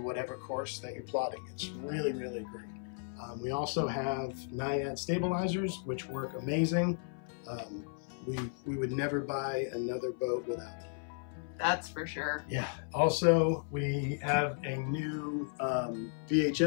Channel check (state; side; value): silent; right; 55 dB below the other